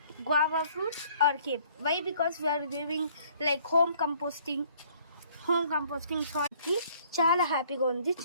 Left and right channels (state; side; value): inverted; both; correlation -0.59